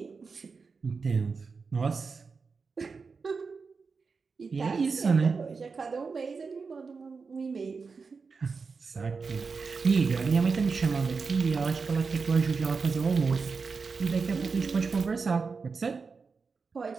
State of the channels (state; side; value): quieter; left; 4.9 dB